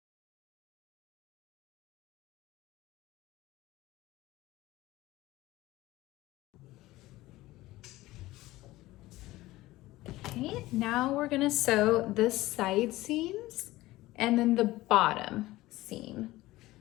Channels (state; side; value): quieter; right; 17.8 dB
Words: Okay, now we're gonna sew the side seams and then the bottom seam.